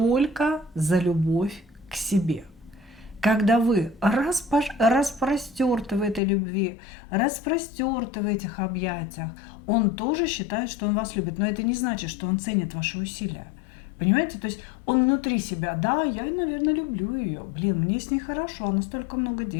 за любовь к себе. Когда вы распростерты в этой любви, распростерты в этих объятиях, он тоже считает, что он вас любит. Но это не значит, что он ценит ваши усилия. Понимаете? То есть он внутри себя, да, я, наверное, люблю ее. Блин, мне с ней хорошо, она столько много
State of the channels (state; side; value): drops out; right; at 6.2 s